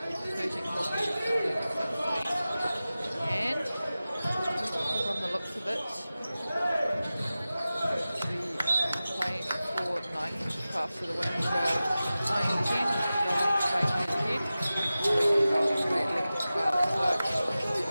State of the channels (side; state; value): both; inverted; correlation -0.95